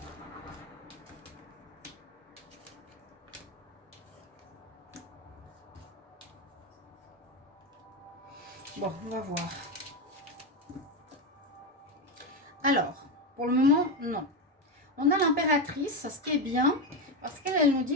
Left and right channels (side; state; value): both; normal; correlation 0.12